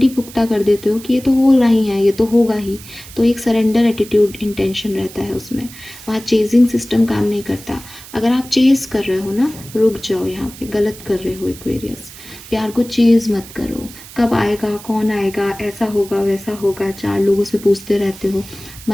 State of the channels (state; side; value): noise; right; hiss, 17 dB below the sound